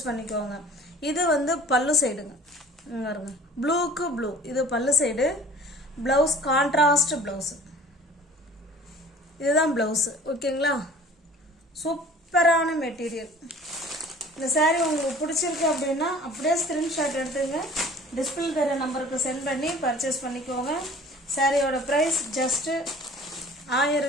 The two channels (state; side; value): normal; both; correlation 0.47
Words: பண்ணிக்கோங்க. இது வந்து பல்லு சைடுங்க, பாருங்க, ப்ளூக்கு ப்ளூ. இது பல்லு சைடு. ப்ளவுஸ் கான்ட்ராஸ்ட் ப்ளவுஸு, இதுதான் ப்ளவுஸு. ஓகேங்களா, சூப்பரான மெட்டீரியல். இந்த saree உங்களுக்கு பிடிச்சிருக்கு அப்படின்னா அப்படியே ஸ்க்ரீன்ஷாட் எடுத்துங்க, டிஸ்பிளே தர நம்பருக்கு சென்ட் பண்ணி பர்ச்சேஸ் பண்ணிக்கோங்க. சாரியோட ப்ரைஸ் ஜஸ்ட்டு